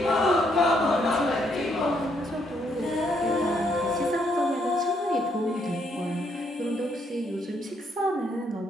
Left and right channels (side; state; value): both; normal; correlation 0.72